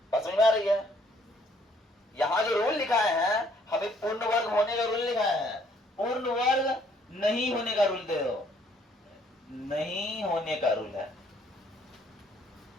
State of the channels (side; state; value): both; normal; correlation 0.64